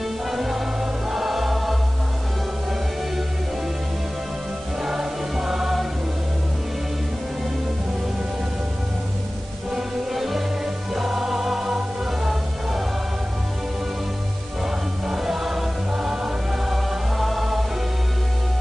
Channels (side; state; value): both; normal; correlation 0.97